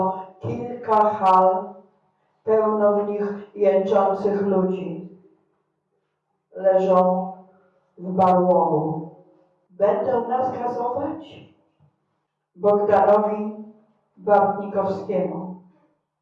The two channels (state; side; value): identical; both; correlation 1.00